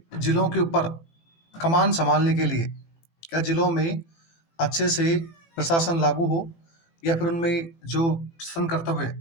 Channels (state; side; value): late; right; 18 ms